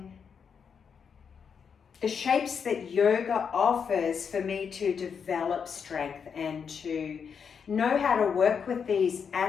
the shapes that yoga offers for me to develop strength and to know how to work with these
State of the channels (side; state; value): right; quieter; 6.6 dB